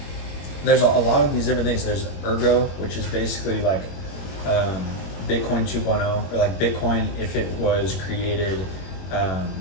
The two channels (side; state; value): right; late; 21 ms